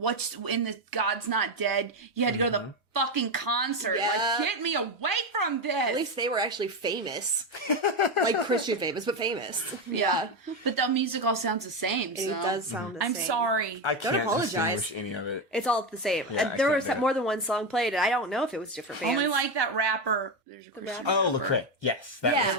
in the God's Not Dead? You had to go to the fucking concert. Yeah. Like, get me away from this. At least they were actually famous. Like Christian famous, but famous. yeah. But the music all sounds the same. So. It does sound the I'm same. sorry. I can't apologize. distinguish any of it. It's all the same. Yeah, I There can't was do it. more than one song played, and I don't know if it was different bands. Only like that rapper. There's a Christian Oh, rapper. Lecrae. Yes, that Yeah.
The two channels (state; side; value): normal; both; correlation 0.12